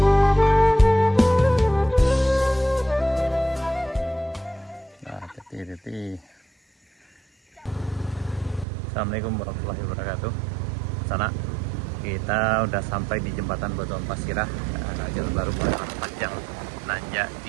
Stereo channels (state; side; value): drops out; left; at 8.7 s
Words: Assalamualaikum warahmatullahi wabarakatuh. Sana kita udah sampai di jembatan Batuan Pasirah, jalan baru Muara Panjang, nanjak